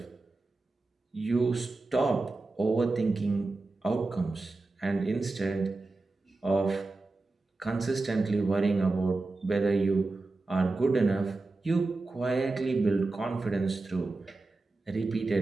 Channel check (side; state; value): left; quieter; 3.4 dB